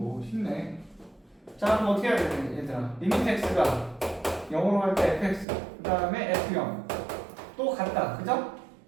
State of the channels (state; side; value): drops out; left; at 5.5 s